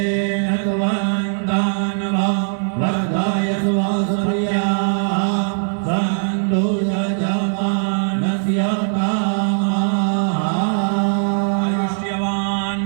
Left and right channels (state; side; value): silent; left; 62 dB below the other